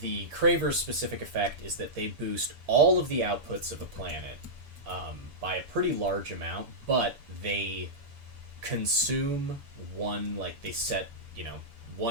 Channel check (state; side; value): late; left; 6.9 ms